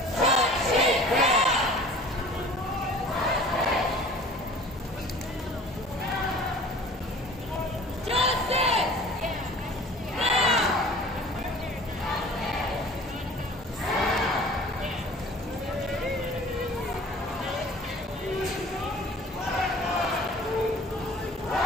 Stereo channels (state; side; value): normal; both; correlation 0.46